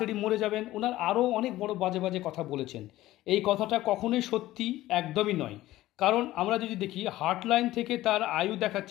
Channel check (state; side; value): quieter; right; 15.9 dB